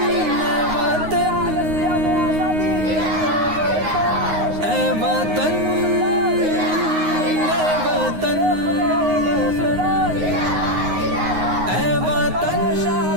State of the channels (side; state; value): left; late; 9.6 ms